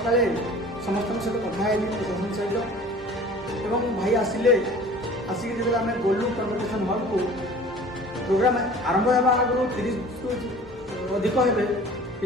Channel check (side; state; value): both; normal; correlation 0.45